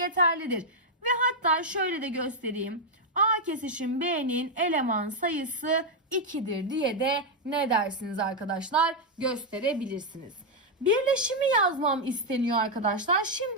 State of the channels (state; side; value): normal; both; correlation 0.00